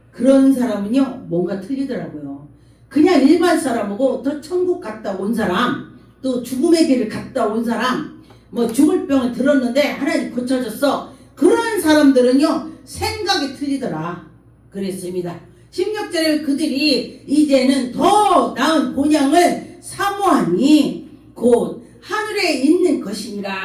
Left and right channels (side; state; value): both; identical; correlation 1.00